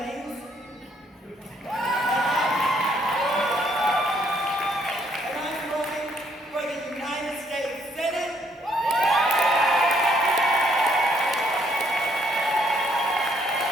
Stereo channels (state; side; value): normal; both; correlation 0.69